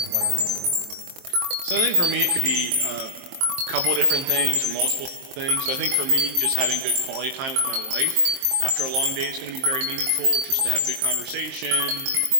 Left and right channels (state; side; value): late; left; 23 ms